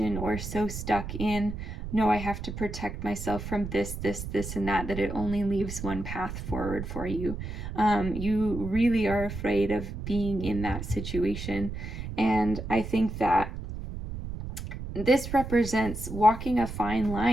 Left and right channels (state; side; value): noise; right; rumble, 7 dB below the sound